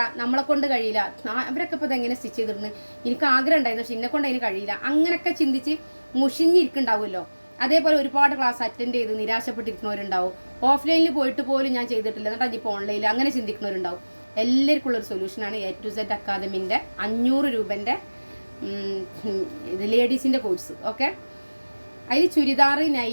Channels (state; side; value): inverted; both; correlation -1.00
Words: നമ്മളെ കൊണ്ട് കഴിയില്ല, അവരൊക്കെ ഇപ്പോൾ ഇതെങ്ങനെ സ്റ്റിച്ച് ചെയ്തിരുന്നു, എനിക്ക് ആഗ്രഹം ഉണ്ടായിരുന്നു പക്ഷെ എന്നെ കൊണ്ട് അതിന് കഴിയില്ല, അങ്ങനെയൊക്കെ ചിന്തിച്ച് മുഷിഞ്ഞിരിക്കുന്നുണ്ടാവുമല്ലോ. അതേപോലെ ഒരുപാട് ക്ലാസ് അറ്റൻഡ് ചെയ്ത് നിരാശപ്പെട്ടിരിക്കുന്നവരുണ്ടാവും. ഓഫ്ലൈനിൽ പോയിട്ട് പോലും ഞാൻ ചെയ്തിട്ടില്ല, എന്നിട്ട് അതിപ്പോൾ ഓൺലൈനിൽ അങ്ങനെ ചിന്തിക്കുന്നവരുണ്ടാവും. എല്ലാവർക്കും ഉള്ളൊരു സൊല്യൂഷനാണ് A to Z അക്കാദമിൻ്റെ 500 രൂപൻ്റെ ലേഡീസിൻ്റെ കോഴ്സ്. ഓക്കെ, അതിൽ ചുരിദാർ,